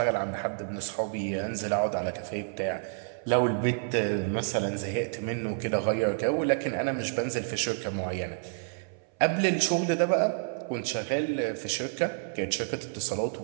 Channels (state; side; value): silent; left; 57 dB below the other